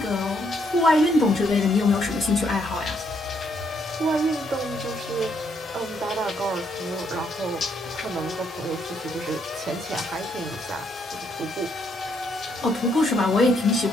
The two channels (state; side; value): normal; both; correlation 0.73